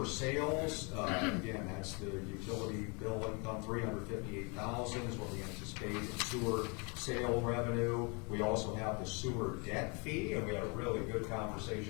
sales, again, that's the utility bill income, $358,000 is what we anticipate in sewer sale revenue. We also have the sewer debt fee, and we had a really good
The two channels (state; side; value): quieter; right; 32.4 dB